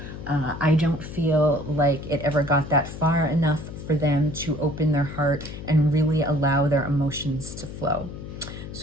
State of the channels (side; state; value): left; noise; hum, 11 dB below the sound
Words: I don't feel like it ever got that far enough for them to open their heart and really allow their emotions to flow.